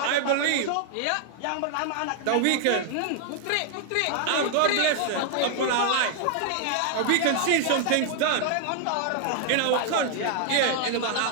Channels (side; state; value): both; different; correlation 0.00